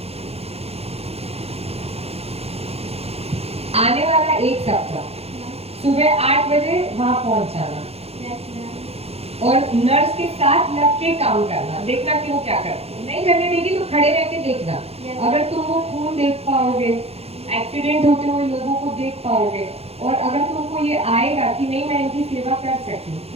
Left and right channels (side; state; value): left; late; 0.29 ms